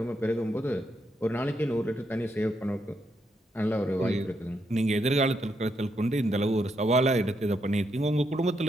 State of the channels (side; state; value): both; normal; correlation 0.79